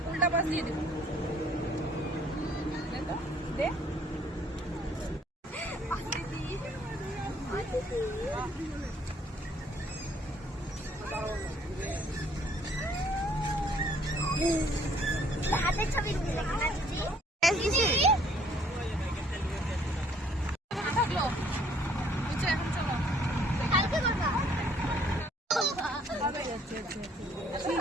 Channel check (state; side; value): normal; both; correlation 0.62